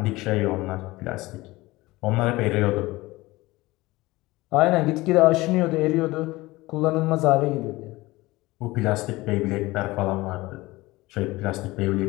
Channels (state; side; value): quieter; right; 20.1 dB